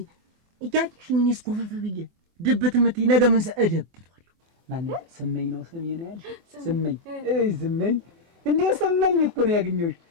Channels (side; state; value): left; late; 24 ms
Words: እያቂሽኝ እኔስ ኮፈፍ ብዬ ድብት የምትይ ነገ ምን እደብቷለሁ። ማነው ስመኝ ነው ስሜ ነው ያልሽ? ስመኝ ስመኝ እንዴ ስመኝ እኮ ነው ያገኘሁሽ።